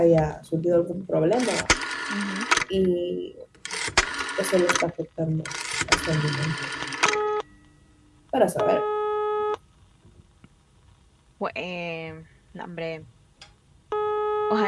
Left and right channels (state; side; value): identical; both; correlation 1.00